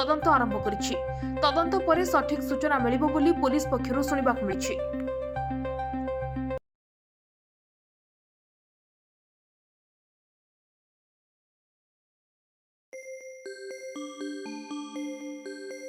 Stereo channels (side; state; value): both; identical; correlation 1.00